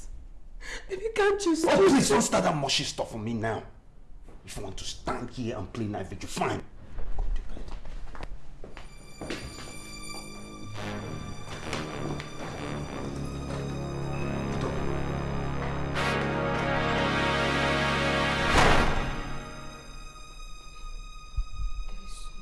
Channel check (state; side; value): identical; both; correlation 1.00